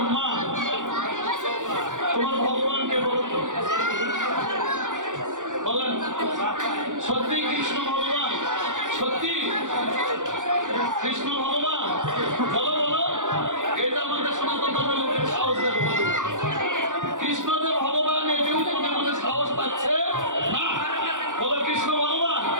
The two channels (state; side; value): late; left; 0.87 ms